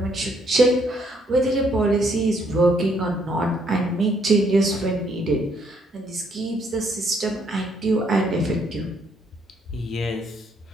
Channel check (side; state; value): both; normal; correlation 0.69